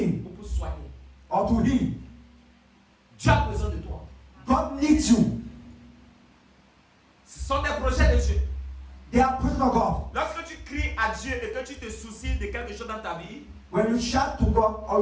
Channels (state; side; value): identical; both; correlation 1.00